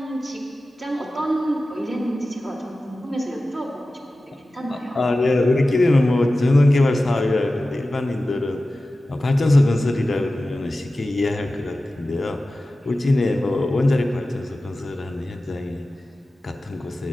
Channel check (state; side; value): normal; both; correlation 0.95